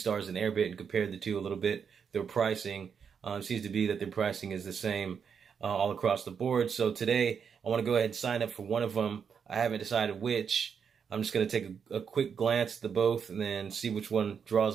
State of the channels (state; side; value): quieter; left; 6.8 dB